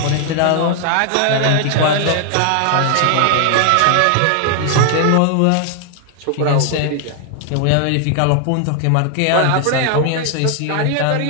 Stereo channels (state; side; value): different; both; correlation 0.00